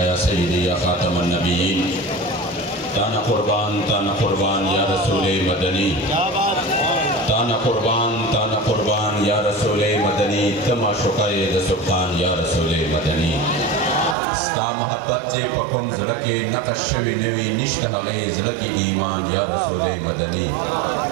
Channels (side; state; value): left; drops out; at 14.2 s